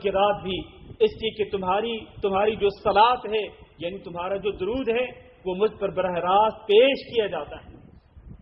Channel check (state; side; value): identical; both; correlation 1.00